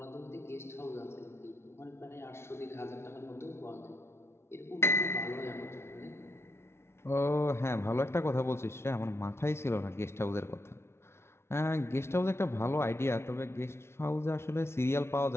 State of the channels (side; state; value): right; late; 0.12 ms